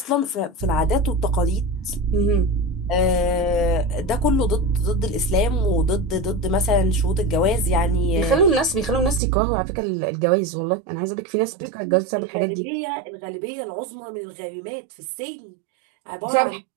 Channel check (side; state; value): left; drops out; at 9.2 s